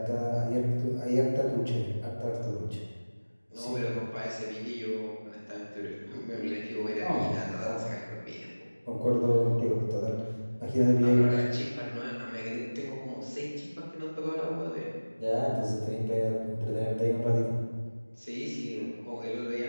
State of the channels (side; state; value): both; inverted; correlation -1.00